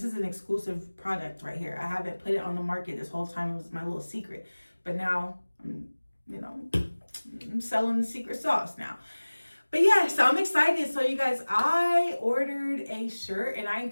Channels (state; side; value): inverted; both; correlation -1.00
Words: is an exclusive product right here. I haven't put it on the market this whole time. It was my little secret. But now, I'm selling the secret sauce now. But yeah, so I'm excited. So you guys, I ordered a shirt, and I